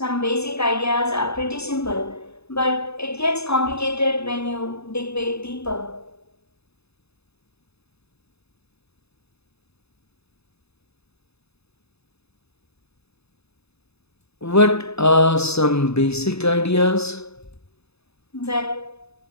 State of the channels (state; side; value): late; right; 0.79 ms